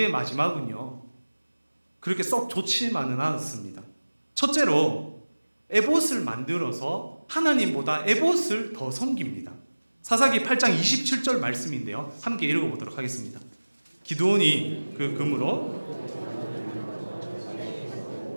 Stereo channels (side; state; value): both; inverted; correlation -1.00